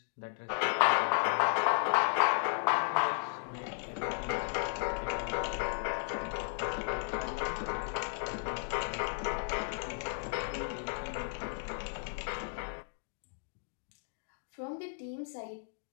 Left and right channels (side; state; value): right; silent; digital silence